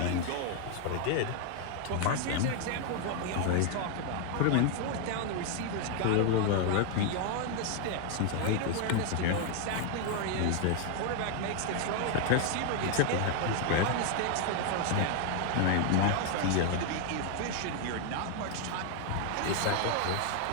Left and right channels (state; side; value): different; both; correlation 0.00